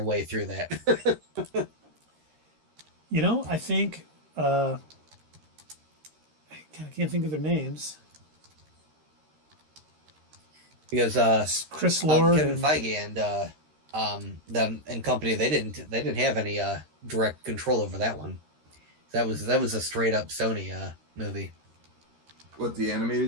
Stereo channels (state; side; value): late; left; 13 ms